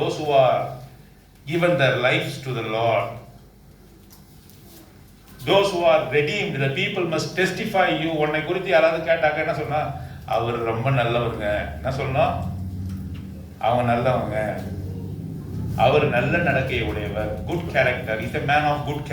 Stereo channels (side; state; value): both; identical; correlation 1.00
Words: who are given their lives to the Lord, those who are redeemed, the people must testify you. உன்னை குறித்து யாராவது கேட்டாக்க என்ன சொன்னா? அவர் ரொம்ப நல்லவங்க. என்ன சொல்லணும்? அவங்க நல்லவங்க, அவர் நல்ல நடக்கையை உடையவர், good character, is a man of good